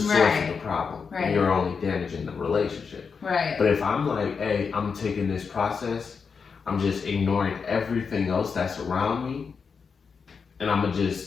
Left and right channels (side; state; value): right; quieter; 5.6 dB